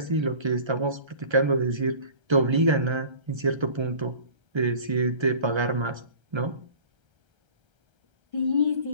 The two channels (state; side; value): late; left; 1.3 ms